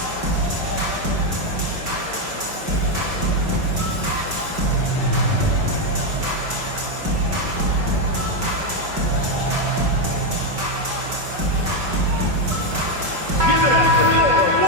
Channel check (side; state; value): left; late; 5.3 ms